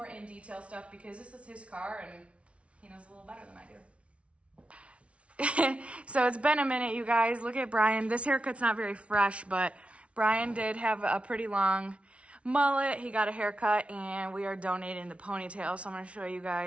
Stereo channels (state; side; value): late; left; 0.062 ms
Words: in detail stuff, because this is his car and he knows a little better than I do. So it's been a minute, you guys. Look at Brian. This haircut's not very fresh, but Brian did have a pretty long mullet. He got a haircut, and we are donating the ponytail. So I'm going to show you